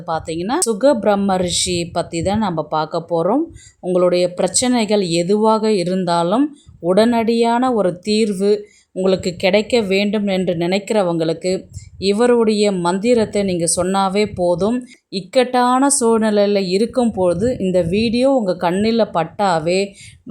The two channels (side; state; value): both; identical; correlation 1.00